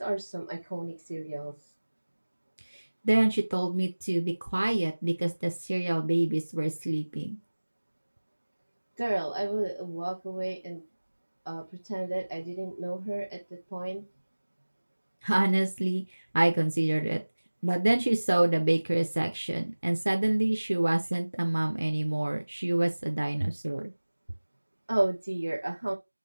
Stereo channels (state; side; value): inverted; both; correlation -1.00